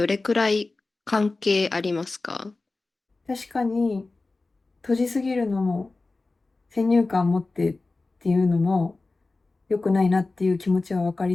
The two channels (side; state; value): right; quieter; 3.4 dB